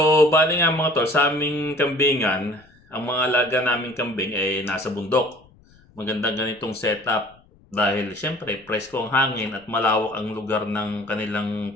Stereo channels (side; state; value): left; noise; rumble, 29 dB below the sound